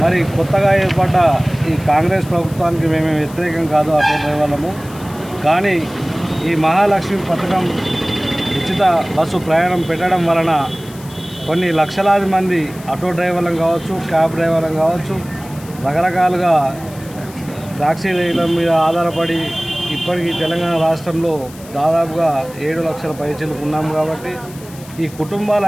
మరి కొత్తగా ఏర్పడ్డ ఈ కాంగ్రెస్ ప్రభుత్వానికి మేము వ్యతిరేకం కాదు ఆటో డ్రైవర్లము. కానీ ఈ మహాలక్ష్మి పథకం ఉచిత బస్సు ప్రయాణం పెట్టడం వలన కొన్ని లక్షలాది మంది ఆటో డ్రైవర్లను కావచ్చు, క్యాబ్ డ్రైవర్లను కావచ్చు, రకరకాలుగా టాక్సీల మీద ఆధారపడి ఇప్పటికీ తెలంగాణ రాష్ట్రంలో దాదాపుగా 7 లక్షల పైచీలకు ఉన్నాము. కాబట్టి ఈ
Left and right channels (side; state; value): left; noise; hiss, 20 dB below the sound